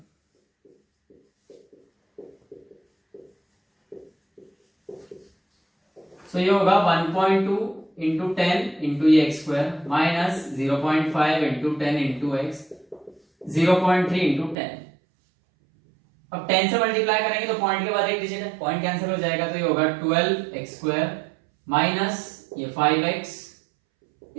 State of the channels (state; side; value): drops out; left; at 14.6 s